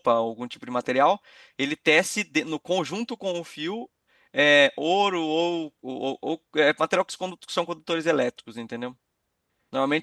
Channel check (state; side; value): identical; both; correlation 1.00